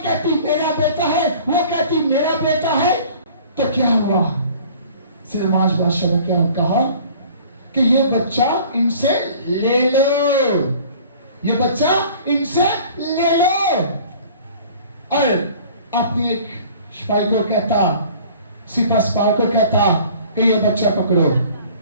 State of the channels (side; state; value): both; inverted; correlation -0.49